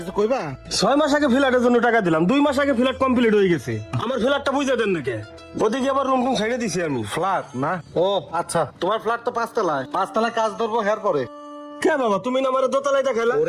কইবা? 6 মাস আগে ফ্ল্যাটের জন্য টাকা দিলাম, 2 মাস আগে ফ্ল্যাট কমপ্লিট হয়ে গেছে। আমার ফ্ল্যাটটা বুঝে দেন নাকি? ওদিকে আবার রুম টুম ছেড়ে দিছি আমি। ফ্ল্যাট না? ও আচ্ছা, তোমার ফ্ল্যাট তো 5 তলায়, 5 তলায় কাজ ধরবো হের পরে। কে বাবা, তুমি না আমার দোতলায় দেখাইলা?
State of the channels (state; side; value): identical; both; correlation 1.00